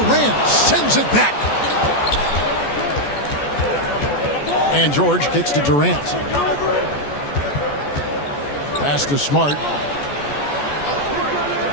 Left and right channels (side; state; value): right; late; 14 ms